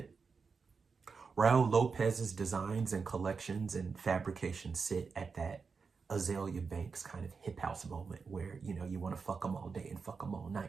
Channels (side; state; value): left; quieter; 5.1 dB